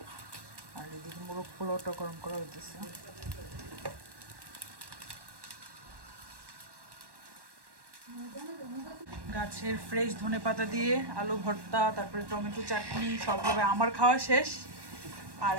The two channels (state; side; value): late; left; 1.1 ms